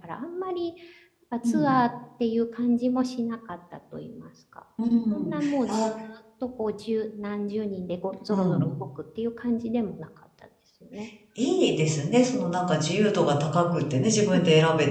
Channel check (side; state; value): both; identical; correlation 1.00